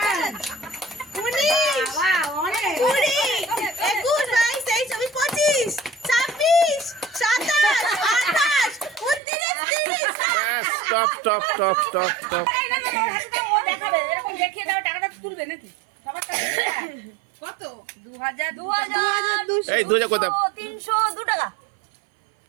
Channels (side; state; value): left; drops out; at 9.2 s